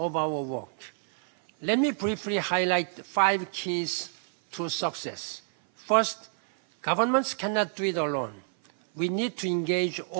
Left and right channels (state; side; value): silent; left; 56 dB below the other